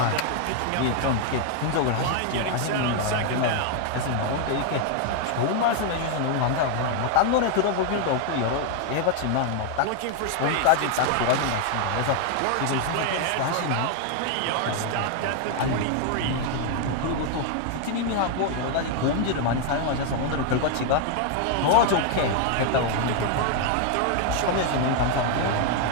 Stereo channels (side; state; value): both; different; correlation 0.00